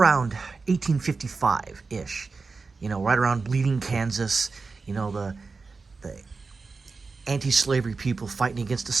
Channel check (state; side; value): quieter; left; 4.3 dB